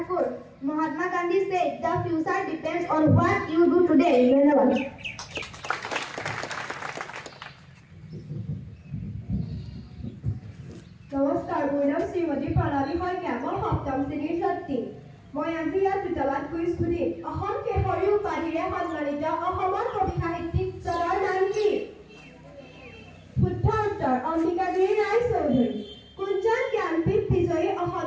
Mahatma Gandhi said the future depends on what you do today. ধন্যবাদ। নমস্কাৰ, মোৰ নাম শ্ৰীমতী প্ৰণালী শইকীয়া। মই 7ম শ্ৰেণীৰ ছাত্ৰী। মই আজি ইয়াত দুটামান কুইজ সুধিম। অসম কেশৰী উপাধিৰে সন্মানিত অসমৰ কবি সাহিত্যিকজনৰ নাম কি? শুদ্ধ উত্তৰ অম্বিকাগিৰি ৰায়চৌধুৰী। কোনজন জ্ঞানপীঠ বিজয়ী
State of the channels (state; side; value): identical; both; correlation 1.00